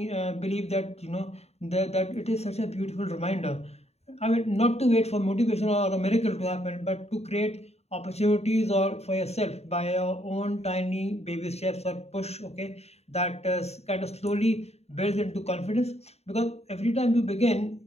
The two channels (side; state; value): right; late; 0.31 ms